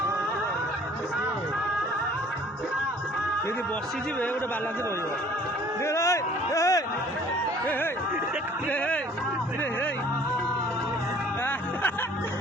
ଯଦି ବସିଯିବେ ଗୋଟେ ବାଲାନ୍ସ ରହିବ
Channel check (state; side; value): normal; both; correlation 0.53